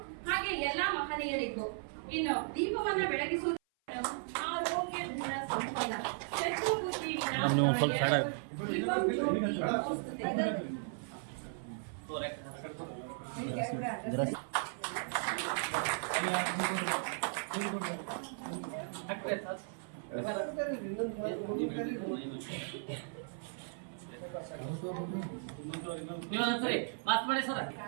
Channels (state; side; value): silent; left; 54 dB below the other